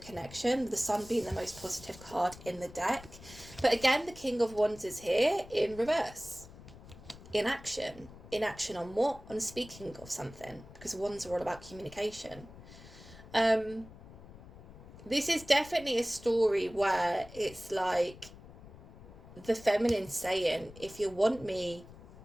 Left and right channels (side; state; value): left; noise; rumble, 18 dB below the sound